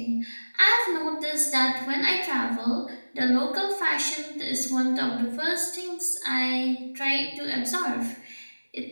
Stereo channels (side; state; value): both; inverted; correlation -1.00